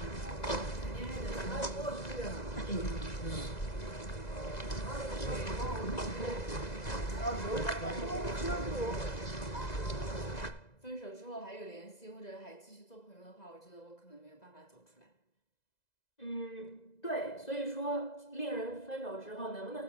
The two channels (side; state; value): right; late; 2.0 ms